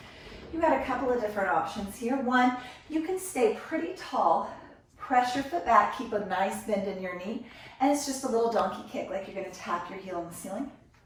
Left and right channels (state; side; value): identical; both; correlation 1.00